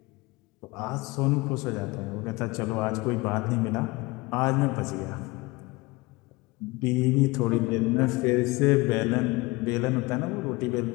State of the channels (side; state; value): right; quieter; 23.0 dB